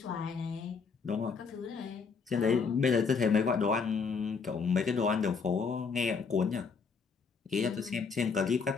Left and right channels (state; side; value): quieter; right; 5.3 dB